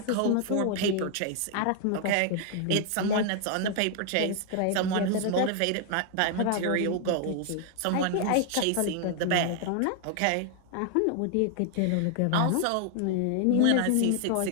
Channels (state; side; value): different; both; correlation 0.00